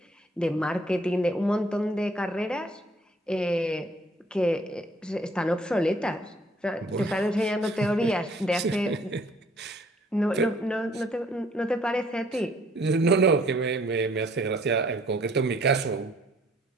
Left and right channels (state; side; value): normal; both; correlation 0.61